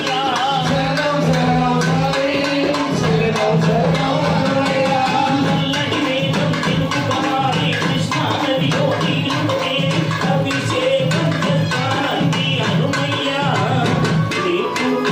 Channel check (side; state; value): both; identical; correlation 1.00